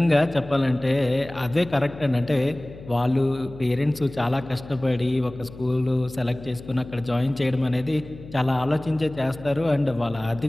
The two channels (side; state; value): left; noise; hum, 16 dB below the sound